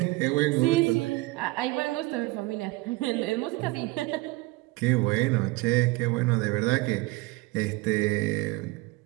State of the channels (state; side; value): quieter; left; 21.9 dB